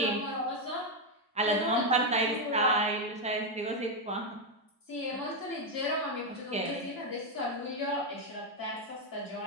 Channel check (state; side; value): normal; both; correlation 0.04